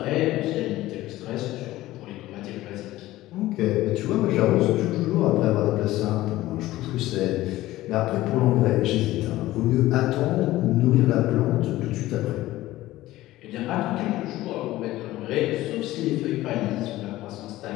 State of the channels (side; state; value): right; quieter; 16.4 dB